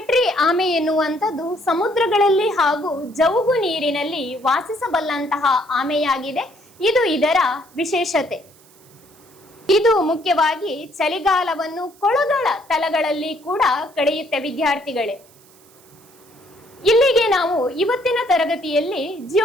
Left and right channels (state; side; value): noise; right; hiss, 27 dB below the sound